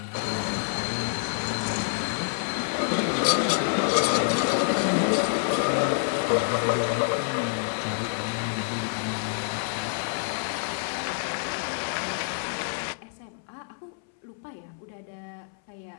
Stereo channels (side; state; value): right; silent; 60 dB below the other